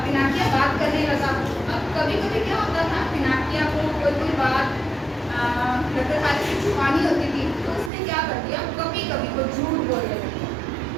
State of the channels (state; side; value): drops out; left; at 7.9 s